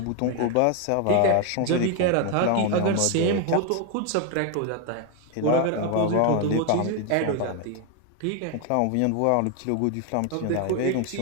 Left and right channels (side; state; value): both; different; correlation 0.01